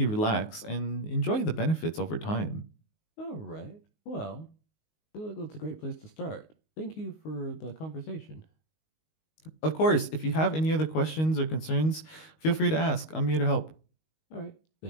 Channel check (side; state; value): right; late; 19 ms